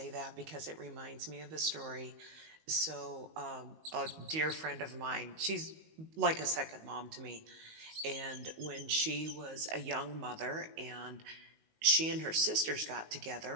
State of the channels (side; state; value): left; late; 19 ms